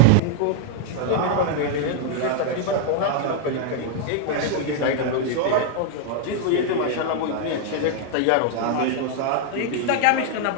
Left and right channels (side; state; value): both; different; correlation 0.00